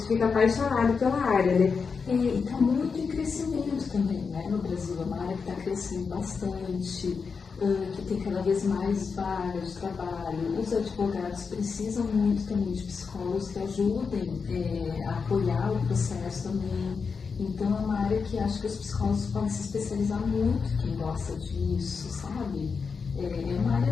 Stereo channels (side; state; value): right; quieter; 5.3 dB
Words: fica apaixonado pela área, né? E está muito em crescimento também, né? No Brasil é uma área que está crescendo bastante, que tem cada vez mais vagas de trabalho. Os advogados precisam muito também de psicólogos que ajudem a apoiar o processo também. Então é uma área que acho que os psicólogos podem se especializar muito, quem gosta disso, sabe? É uma